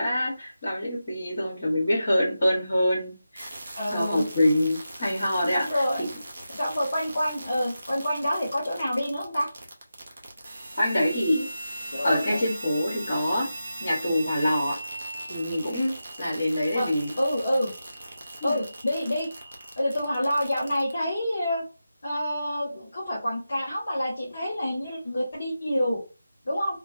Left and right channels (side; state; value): both; inverted; correlation -0.91